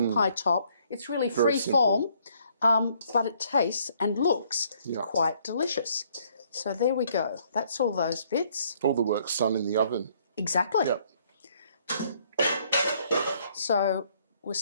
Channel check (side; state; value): both; inverted; correlation -0.65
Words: pie top. It's really free form, but it tastes and looks quite delicious. So there we go. That's all those bits. All the work's done in the oven. Exactly. Yep. So we'll